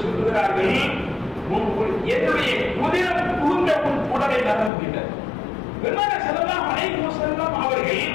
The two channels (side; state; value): right; drops out; at 4.7 s